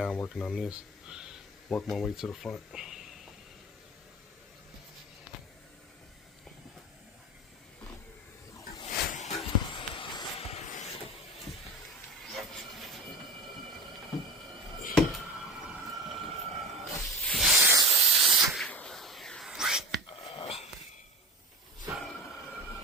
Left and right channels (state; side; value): normal; both; correlation 0.33